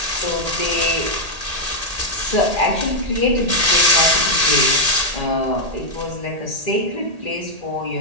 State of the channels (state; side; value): late; left; 1.8 ms